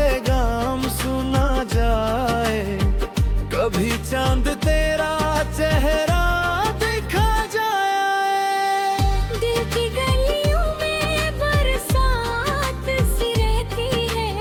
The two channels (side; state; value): both; identical; correlation 1.00